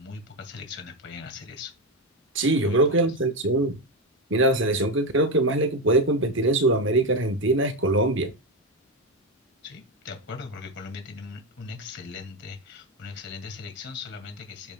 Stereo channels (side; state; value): both; normal; correlation 0.12